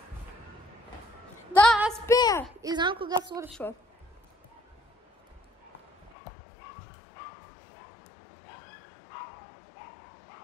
Да, аз пея и знам кога свършва.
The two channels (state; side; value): drops out; right; at 6.1 s